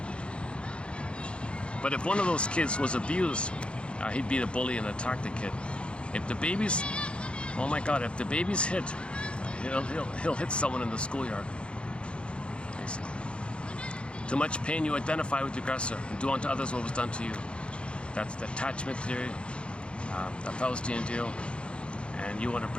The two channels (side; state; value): right; late; 0.057 ms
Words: But if one of those kids was abused, he'd be the bully and attack the kid. If the baby's, oh my God, if the baby's hit, he'll hit someone in the schoolyard. Basically. Too much pain, you identify with the aggressor and do unto others what was done to you. That's the attachment theory, the Faustian deal, and you want